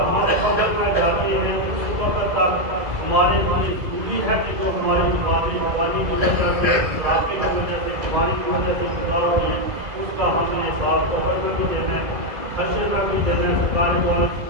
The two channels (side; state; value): left; late; 2.0 ms